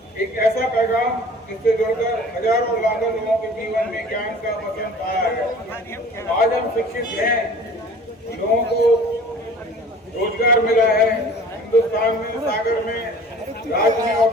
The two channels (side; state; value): both; normal; correlation 0.46